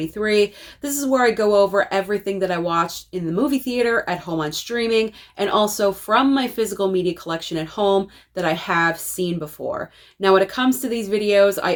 This is where I go over everything that I watched in the movie theater, at home on streaming, and also from my physical media collection at home that I have seen before. Now, when it comes to these videos, I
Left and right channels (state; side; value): identical; both; correlation 1.00